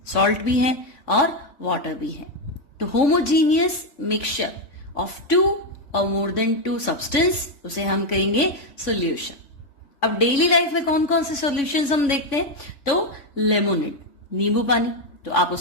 सॉल्ट भी है और वाटर भी है। तो होमोजीनियस मिक्सचर ऑफ टू और मोर देन टू सब्सटेंस, उसे हम कहेंगे सॉल्यूशन। अब डेली लाइफ में कौन कौन से सॉल्यूशंस हम देखते हैं? तो लेमोनेड, नींबू पानी, तो आप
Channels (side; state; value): right; late; 3.5 ms